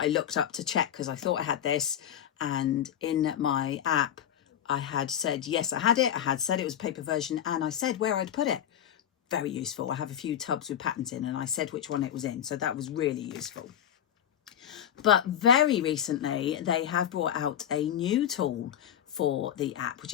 looked up to check, because I thought I had this, and in my app I had said yes, I had it, I had said it was a paper version, and I said where I'd put it. Very useful. I have a few tubs with patterns in and I said which one it was in, so that was really useful. But very recently they have brought out a new tool for the app, which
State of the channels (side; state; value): right; quieter; 10.1 dB